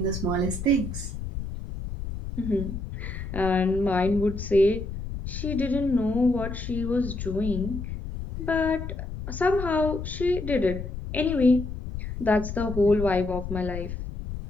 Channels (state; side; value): noise; left; rumble, 7 dB below the sound